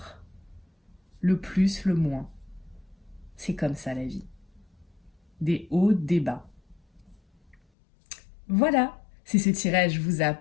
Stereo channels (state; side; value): drops out; right; at 7.6 s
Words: le plus, le moins. C'est comme ça la vie. Des hauts, des bas. Voilà, si ce tirage vous a